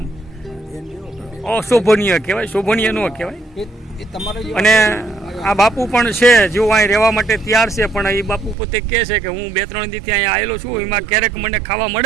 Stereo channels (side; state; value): left; drops out; at 8.6 s